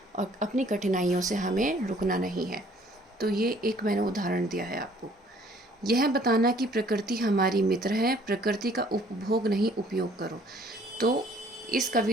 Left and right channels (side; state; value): both; normal; correlation 0.58